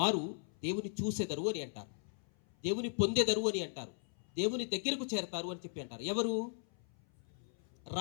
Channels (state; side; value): silent; right; 53 dB below the other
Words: దేవుని చూసెదరు అని అంటారు, దేవుని పొందెదరు అని అంటారు, దేవుని దగ్గరకు చేరతారు అని చెప్పి అంటారు. ఎవరు?